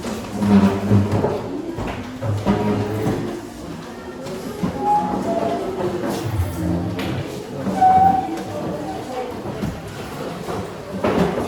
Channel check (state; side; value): identical; both; correlation 1.00